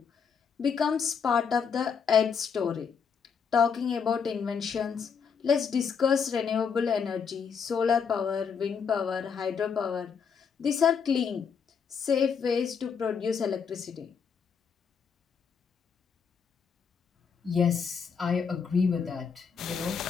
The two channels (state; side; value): quieter; right; 6.4 dB